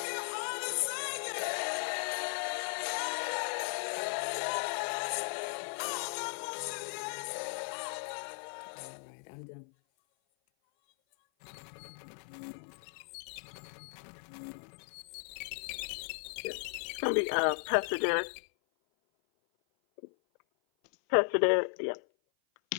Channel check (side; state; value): right; silent; 54 dB below the other